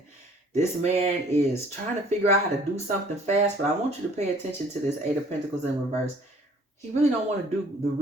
This man is trying to figure out how to do something fast, but I want you to pay attention to this 8 of Pentacles in reverse. He really don't want to do the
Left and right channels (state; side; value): normal; both; correlation 0.55